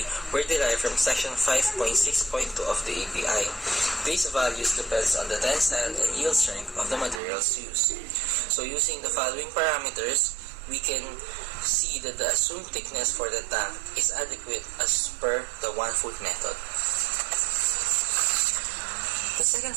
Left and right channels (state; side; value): drops out; left; at 7.2 s